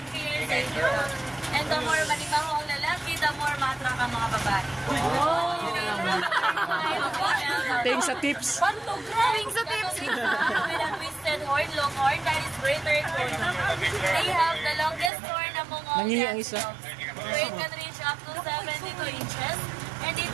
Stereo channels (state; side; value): drops out; left; at 15.1 s